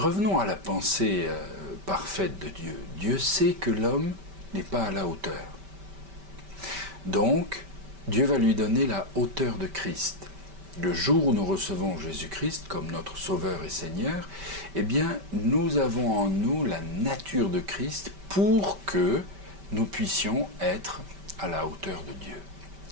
à la pensée parfaite de Dieu. Dieu sait que l'homme n'est pas à la hauteur. Donc, Dieu va lui donner la hauteur de Christ. Le jour où nous recevons Jésus-Christ comme notre Sauveur et Seigneur, eh bien, nous avons en nous la nature de Christ pour que nous puissions être à la hauteur de Dieu.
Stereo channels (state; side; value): late; left; 5.1 ms